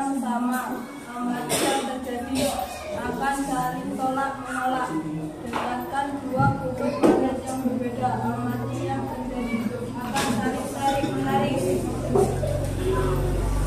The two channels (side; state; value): both; identical; correlation 1.00